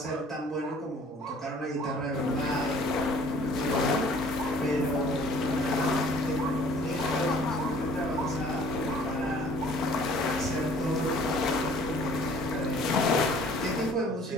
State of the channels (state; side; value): normal; both; correlation 0.53